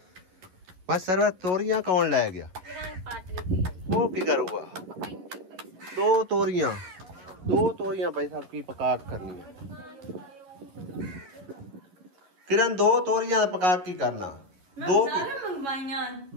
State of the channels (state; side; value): late; left; 11 ms